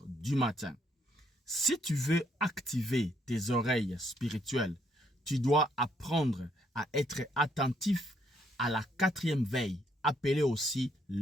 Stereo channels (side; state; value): both; normal; correlation 0.71